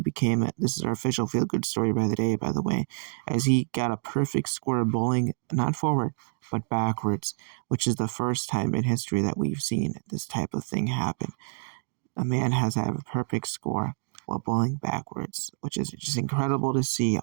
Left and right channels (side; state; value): left; silent; digital silence